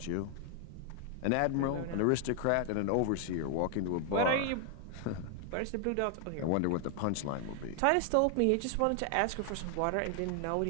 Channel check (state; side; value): different; both; correlation 0.00